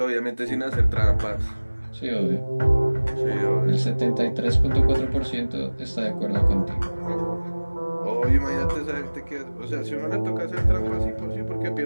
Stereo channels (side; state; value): both; inverted; correlation -1.00